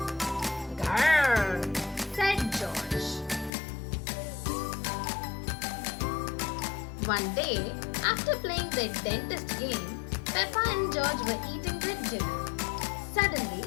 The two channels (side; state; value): right; drops out; at 3.5 s